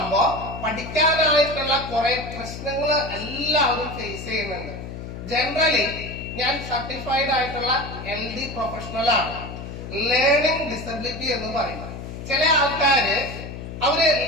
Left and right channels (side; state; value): left; noise; hum, 9 dB below the sound